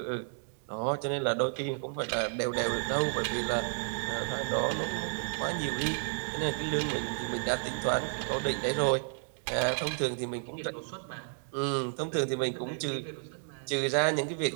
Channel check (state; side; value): silent; left; digital silence